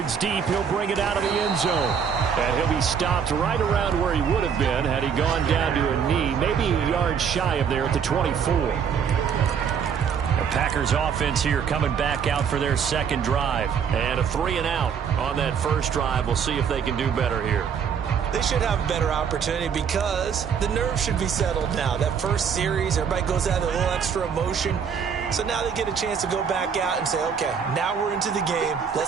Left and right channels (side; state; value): left; quieter; 7.1 dB